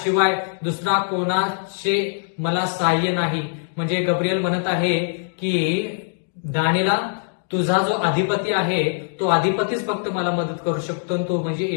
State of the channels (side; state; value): right; silent; digital silence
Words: दुसरा कोणाचे मला सहाय्य नाही. म्हणजे गब्रिएल म्हणत आहे की दानिएला, तुझा जो अधिपती आहे तो अधिपतीच फक्त मला मदत करू शकतो, तो म्हणजे